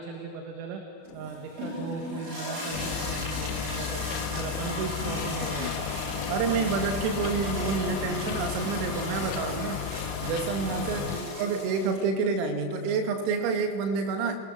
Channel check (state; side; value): late; left; 36 ms